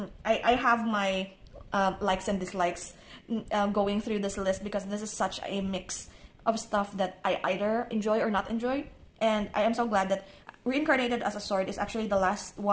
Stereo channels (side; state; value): both; identical; correlation 1.00